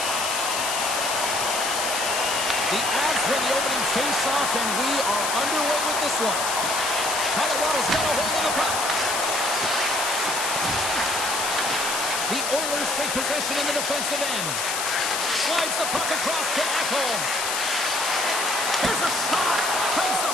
The Avs win the opening face-off, and we are underway with this one. Colorado's got a hold of the puck. The Oilers take possession in the defensive end. Slides the puck across to Ekholm. Here's a shot. Comes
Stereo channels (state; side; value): noise; left; hiss, 1 dB below the sound